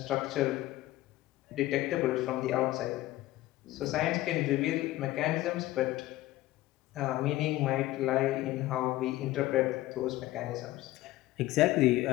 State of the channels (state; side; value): quieter; right; 16.6 dB